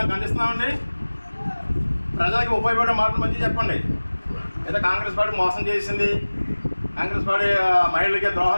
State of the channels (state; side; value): inverted; both; correlation -1.00